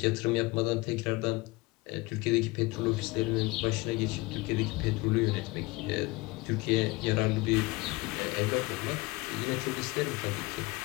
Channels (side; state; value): right; quieter; 22.8 dB